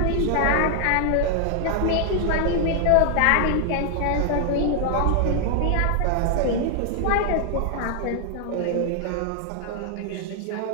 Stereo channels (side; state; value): both; different; correlation 0.00